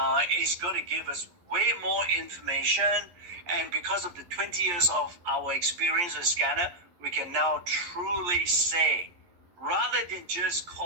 it's going to give us way more information. And because of the 20 years of our experience with scanner, we can now truly say, rather than just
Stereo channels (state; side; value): late; left; 11 ms